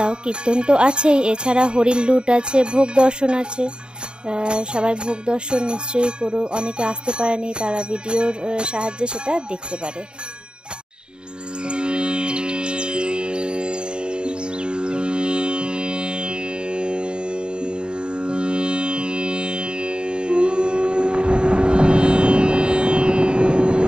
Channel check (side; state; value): left; late; 0.050 ms